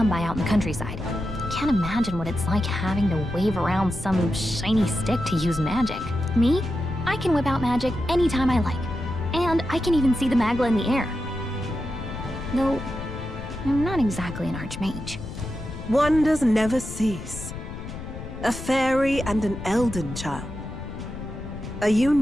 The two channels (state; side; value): noise; left; rumble, 10 dB below the sound